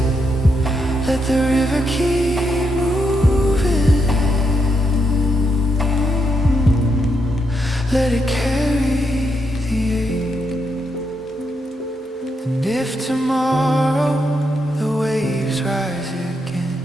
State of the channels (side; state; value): both; normal; correlation 0.81